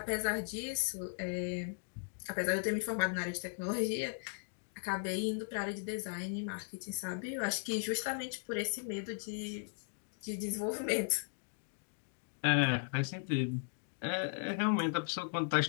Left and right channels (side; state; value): right; silent; digital silence